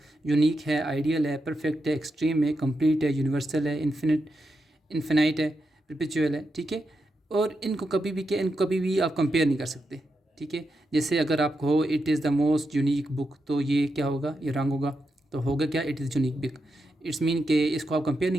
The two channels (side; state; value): both; normal; correlation 0.86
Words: यूनिक है, आइडियल है, परफेक्ट है, एक्सट्रीम है, कंप्लीट है, यूनिवर्सल है, इन्फिनाइट है, परपेचुअल है। ठीक है, और इनको कभी भी इनको कभी भी आप कंपेयर नहीं कर सकते। ठीक है, जैसे अगर आप कहो it is the most unique book, तो ये क्या होगा, ये रॉन्ग होगा। तो होगा क्या, it is unique book. It's mean कि इसको आप कंपेयर